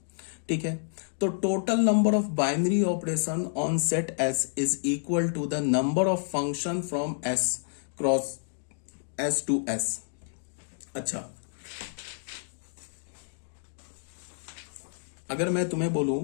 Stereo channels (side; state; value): right; silent; digital silence